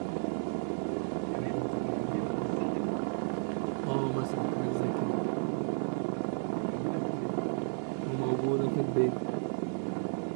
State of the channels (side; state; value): left; silent; 55 dB below the other